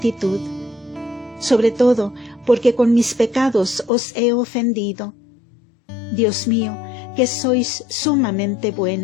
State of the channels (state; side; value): drops out; right; at 3.9 s